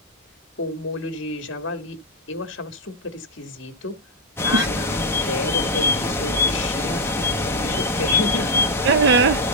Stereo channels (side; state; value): both; normal; correlation -0.02